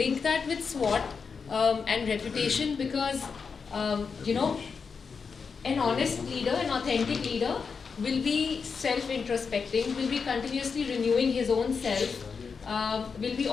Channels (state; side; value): quieter; right; 5.5 dB